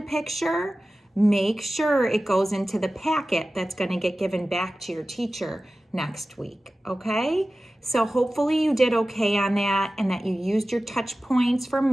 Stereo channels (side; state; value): both; normal; correlation 0.95